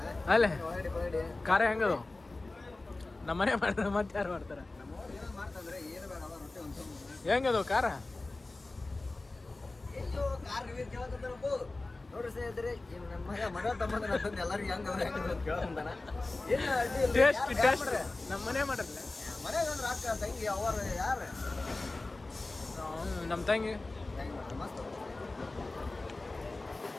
ಅಲ್ಲೇ ಖಾರ ಹೆಂಗದು? ನಮ್ಮನೆ ಮಾಡ್ತಾರೆ ಮತ್ತೆ ಯಾರು ಮಾಡ್ತಾರ? ಹೆಂಗದು ಖಾರ? ನೋಡ್ರಿ ಸ್ನೇಹಿತರೆ, ನಮ್ಮ ಮಗ ತಮ್ಮದ ಎಲ್ಲರಿಗೂ ಟೇಸ್ಟ್ ಟೇಸ್ಟ್ ನಮ್ಮನೆ ಮಾಡ್ರಲ್ಲ. ಮನೆಗೆ ಅಂದ್ರೆ ಅಕ್ಕ ತಂಗಿ ಅವರು ಯಾರು ನಮ್ಮ ತಂಗಿ ಮಸ್ತ್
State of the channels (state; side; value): quieter; right; 3.2 dB